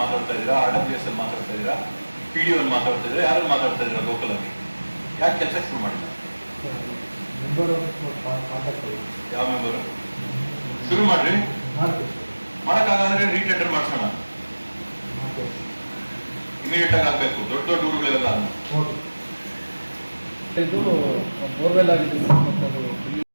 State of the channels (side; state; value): both; inverted; correlation -1.00